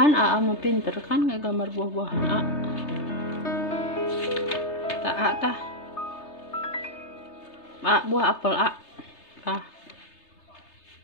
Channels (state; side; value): late; right; 3.3 ms